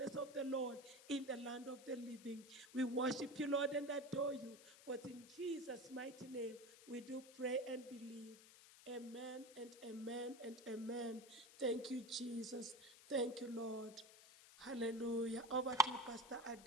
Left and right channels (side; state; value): left; noise; hiss, 19 dB below the sound